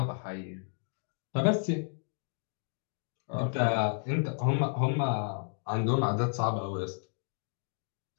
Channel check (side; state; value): right; silent; digital silence